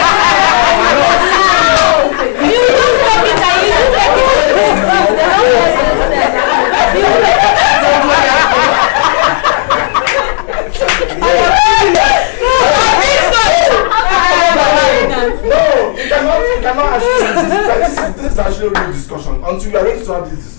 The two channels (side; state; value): right; silent; 59 dB below the other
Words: No, you cannot actually. This is actually a real discussion. Until we are ready to have this